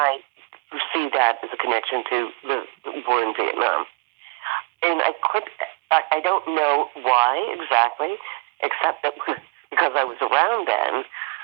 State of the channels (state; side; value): quieter; left; 28.5 dB